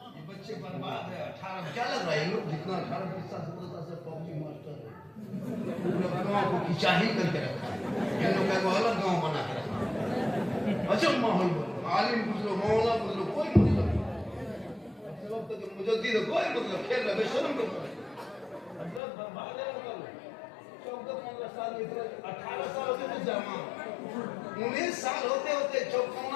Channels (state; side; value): drops out; right; at 19.0 s